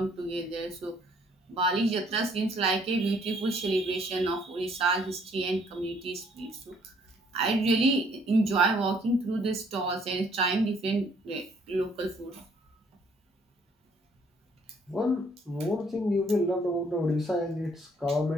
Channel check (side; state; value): both; normal; correlation 0.63